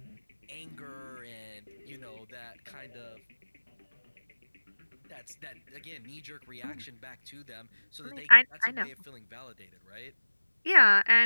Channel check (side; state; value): both; inverted; correlation -1.00